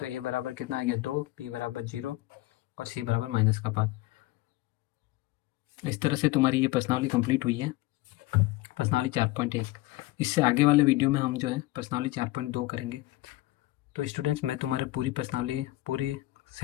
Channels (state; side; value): quieter; right; 18.5 dB